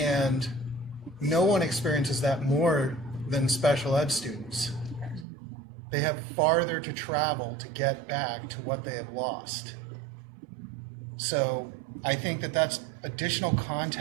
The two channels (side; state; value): left; drops out; at 5.2 s